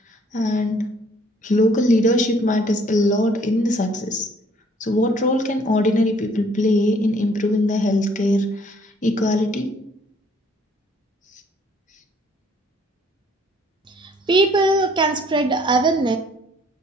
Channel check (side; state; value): both; normal; correlation 0.61